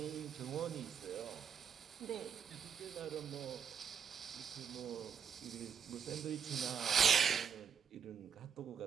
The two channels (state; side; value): quieter; left; 7.2 dB